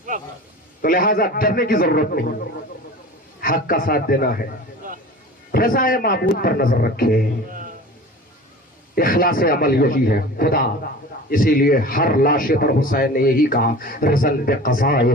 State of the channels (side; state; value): both; normal; correlation 0.38